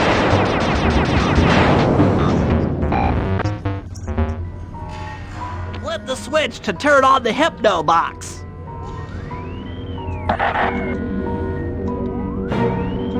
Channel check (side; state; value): both; identical; correlation 1.00